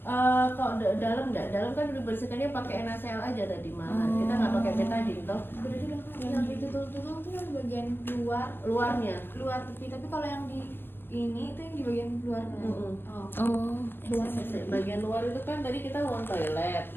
Kok dalam enggak? Dalam kan dibersihkannya pakai NaCl aja tadi malahan. Kita nggak pakai betadine toh. Berarti yang ditutul-tutul tuh yang bagian Luarnya. luar tepi, tapi kalau yang di ini itu yang di bagian luar. Mm-mm. Oh. Bagian luar itu kan tadi kita wound toilet,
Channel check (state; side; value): late; right; 0.10 ms